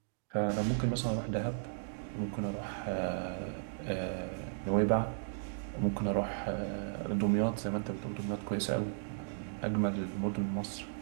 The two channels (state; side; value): silent; left; digital silence